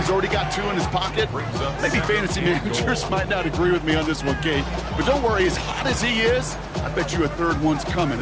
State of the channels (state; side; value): identical; both; correlation 1.00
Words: already got 2 in his pocket. Maybe fantasy managers might not agree with me on this one, Kate. But don't worry, as hot as he is, I bet you a 3rd one's coming